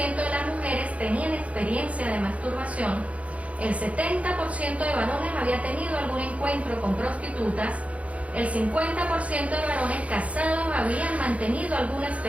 de las mujeres tenían experiencia de masturbación, el 70% de varones había tenido algún encuentro con prostitutas, el 50% de varones casados habían mantenido alguna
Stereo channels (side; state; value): left; late; 0.065 ms